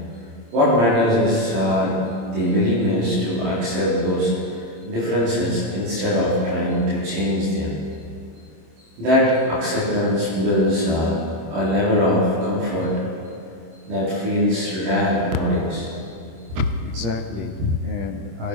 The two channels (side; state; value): left; late; 26 ms